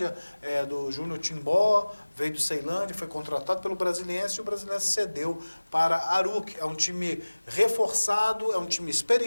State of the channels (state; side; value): inverted; both; correlation -1.00